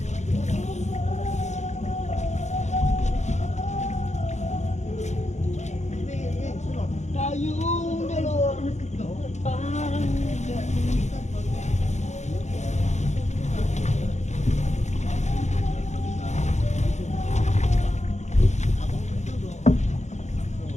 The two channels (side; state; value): right; late; 0.33 ms